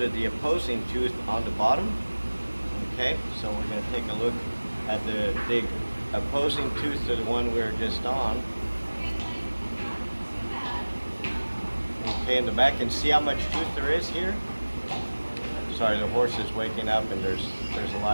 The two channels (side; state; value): both; inverted; correlation -1.00